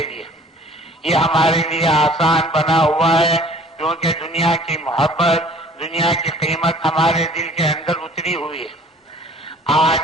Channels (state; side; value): normal; both; correlation 0.51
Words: لیے، یہ ہمارے لیے آسان بنا ہوا ہے، کیونکہ دنیا کی محبت، دنیا کی قیمت ہمارے دل کے اندر اتری ہوئی ہے۔